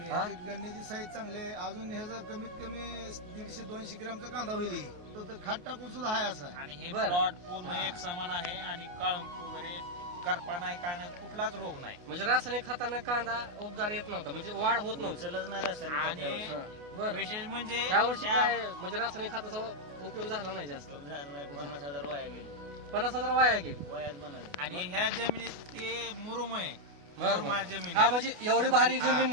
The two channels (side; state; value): left; late; 28 ms